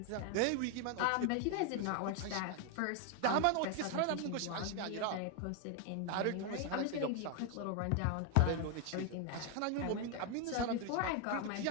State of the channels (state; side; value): different; both; correlation 0.01